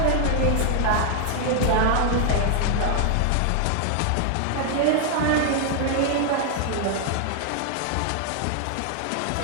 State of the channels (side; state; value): both; different; correlation 0.00